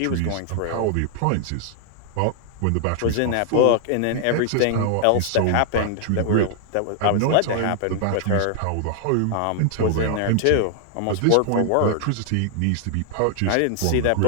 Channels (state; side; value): different; both; correlation 0.00